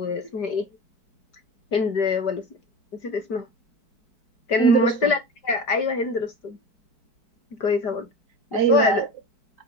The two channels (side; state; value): right; late; 4.6 ms